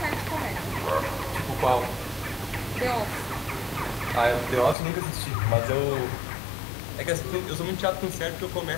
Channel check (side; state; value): right; drops out; at 4.8 s